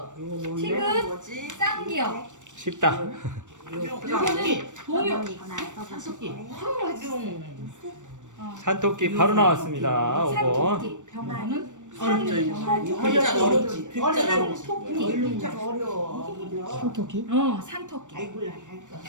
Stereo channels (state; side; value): late; left; 0.85 ms